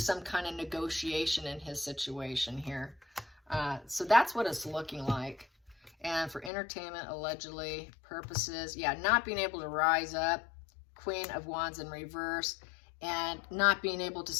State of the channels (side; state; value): right; drops out; at 6.5 s